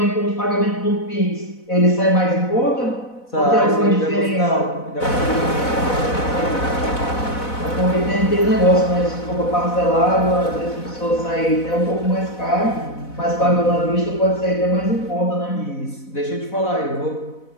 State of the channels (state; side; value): late; right; 4.0 ms